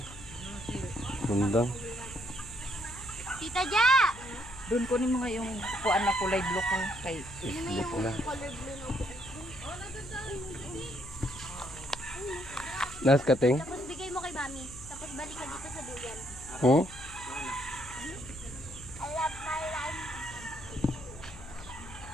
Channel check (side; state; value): left; noise; hum, 16 dB below the sound